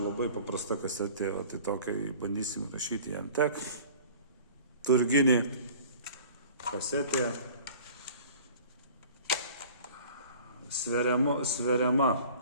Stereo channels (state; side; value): inverted; both; correlation -0.46